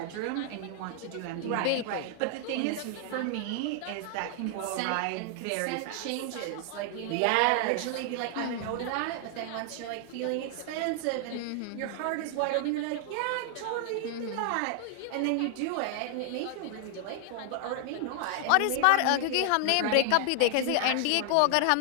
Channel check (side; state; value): both; different; correlation 0.00